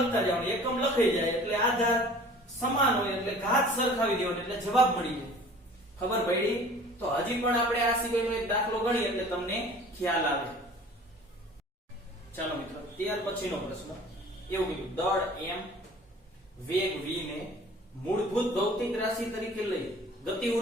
જવાનું. એકમ લખાઈ જાય એટલે આધાર સમાન હોય એટલે ઘાત સરખાવી દેવાનો એટલે જવાબ મળી જાય. ખબર પડી. તો હજી પણ આપણે આ સિવાયનો એક દાખલો ગણીએ એટલે તમને ખ્યાલ આવે. ચાલો મિત્રો ત્યાર પછીનો પ્રશ્ન એવું કીધું દળ m વેગ v ને મૂળભૂત ભૌતિક રાશિ તરીકે લઈ ગતિ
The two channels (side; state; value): both; normal; correlation 0.47